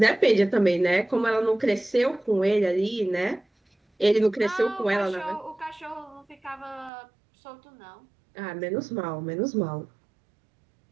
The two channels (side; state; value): left; drops out; at 6.9 s